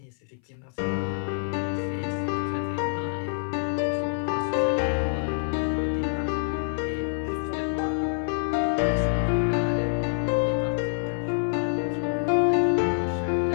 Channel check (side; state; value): right; silent; 58 dB below the other